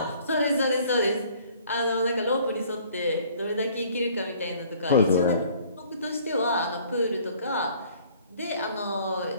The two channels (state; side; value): inverted; both; correlation -0.56